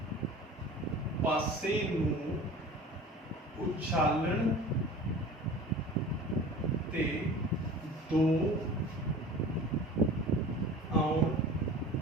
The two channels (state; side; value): normal; both; correlation 0.40